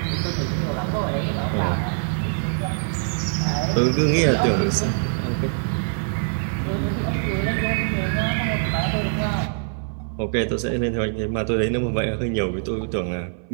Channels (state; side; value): silent; left; 63 dB below the other